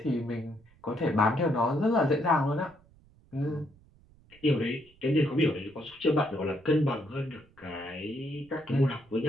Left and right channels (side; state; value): right; noise; rumble, 28 dB below the sound